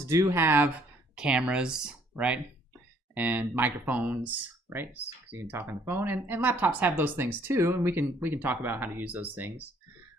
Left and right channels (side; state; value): both; normal; correlation 0.63